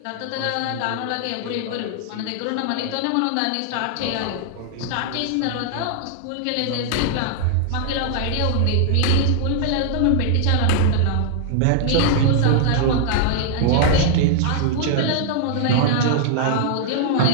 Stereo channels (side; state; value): both; different; correlation -0.01